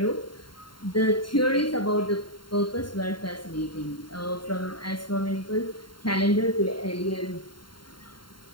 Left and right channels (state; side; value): late; right; 0.72 ms